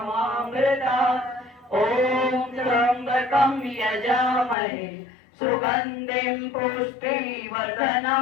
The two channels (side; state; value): right; drops out; at 4.5 s